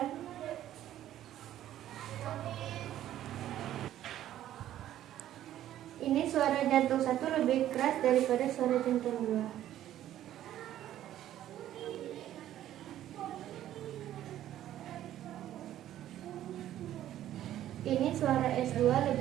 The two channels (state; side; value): quieter; left; 12.4 dB